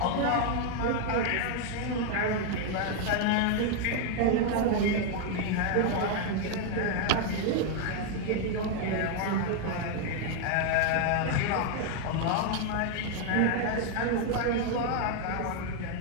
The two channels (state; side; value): different; both; correlation 0.01